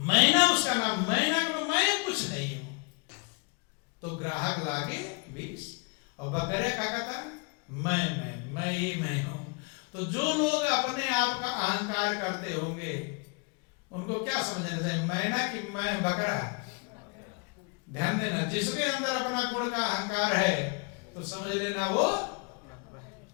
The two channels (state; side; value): quieter; right; 33.8 dB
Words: उसका नाम, मैना को मैं कुछ नहीं हूं। तो ग्राहक लागे 20 और बकरे का कहता मैं ये मैं हूं। तो जो लोग अपने आप का अहंकार करते होंगे उनको क्या समझना चाहिए, मैना कि मैं बकरा? ध्यान देना, जिसके अंदर अपना गुण का अहंकार है तो समझ लेना वो,